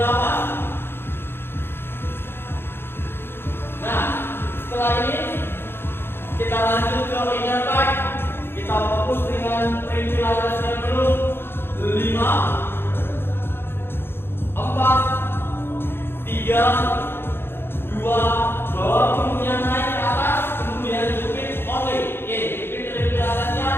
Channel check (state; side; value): late; right; 0.11 ms